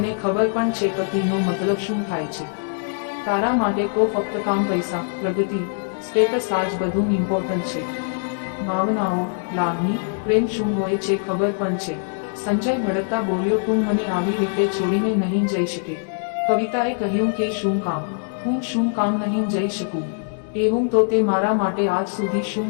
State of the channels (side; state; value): right; silent; digital silence